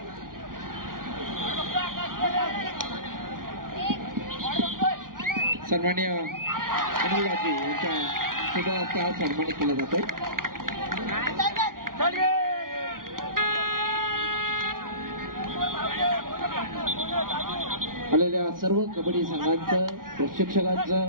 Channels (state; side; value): late; left; 0.91 ms